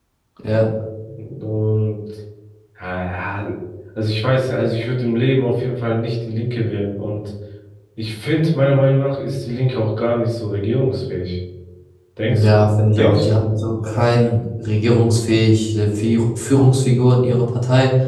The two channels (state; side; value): identical; both; correlation 1.00